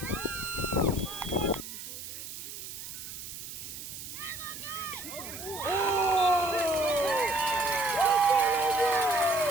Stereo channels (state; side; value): noise; right; hiss, 10 dB below the sound